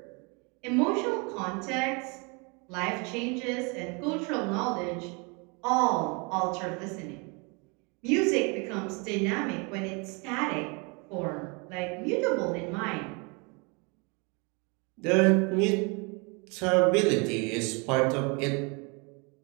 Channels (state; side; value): quieter; left; 31.5 dB